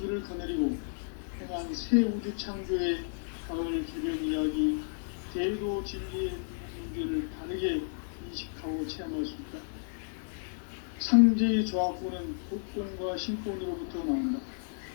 거느리고 행한 새 우주 창조의 가을 기변 이야기, 대도 진리의 문제를 바르게 인식하고 체험할 수 있다. 상제의 조화권은 복권과 신권으로부터 나온다.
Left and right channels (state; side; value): silent; right; 56 dB below the other